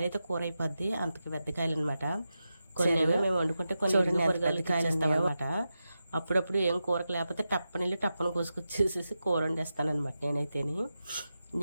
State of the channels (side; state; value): both; inverted; correlation -0.90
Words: అయితే కూర అయిపోద్ది, అంతకి పెద్ద కాయలు అనమాట. కొన్ని మేము వండుకుంటే కొన్ని కాయలు ఇస్తామన్నమాట. అప్పుడప్పుడు ఏం కూరకు లేకపోతే టప్పని కోసుకొచ్చేసేసి కూర వండేస్తానమాట.